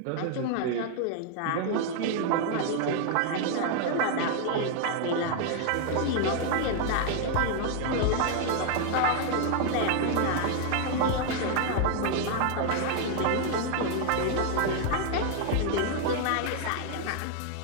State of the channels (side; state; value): both; different; correlation 0.00